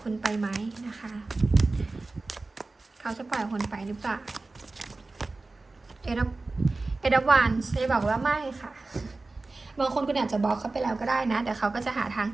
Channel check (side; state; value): left; quieter; 3.4 dB